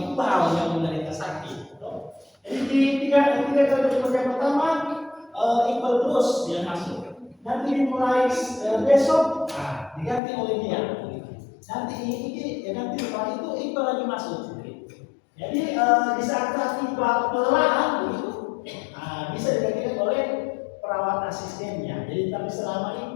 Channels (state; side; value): drops out; right; at 10.2 s